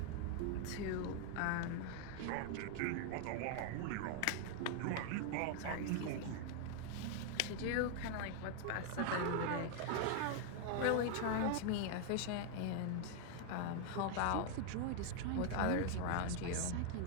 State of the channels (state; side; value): different; both; correlation 0.00